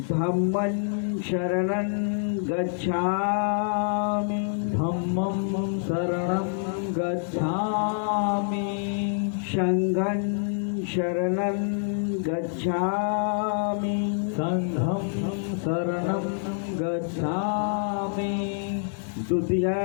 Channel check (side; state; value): right; silent; 59 dB below the other